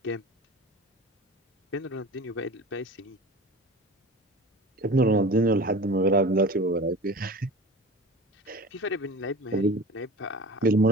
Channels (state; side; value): normal; both; correlation 0.36